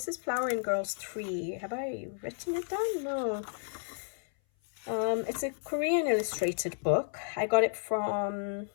is Flower and Girls 3. Have I written it down? No. It's a Korean illustrated book. I got it from,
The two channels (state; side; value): silent; right; 56 dB below the other